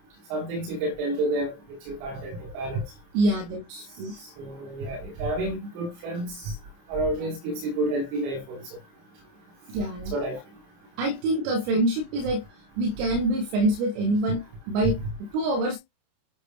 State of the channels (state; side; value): late; left; 29 ms